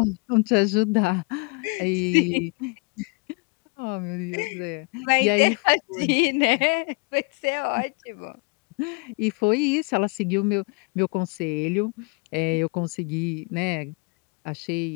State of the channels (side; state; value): right; quieter; 32.1 dB